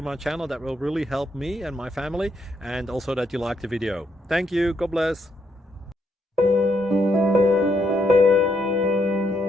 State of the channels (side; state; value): both; normal; correlation 0.76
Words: my channel. That will really help me and my family, and also that you like the video. Thank you, God bless.